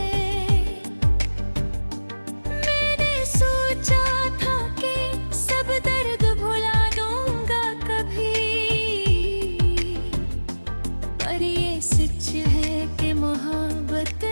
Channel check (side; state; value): both; inverted; correlation -1.00